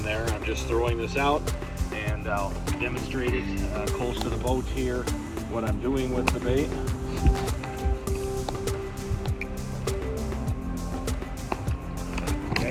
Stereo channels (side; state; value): both; identical; correlation 1.00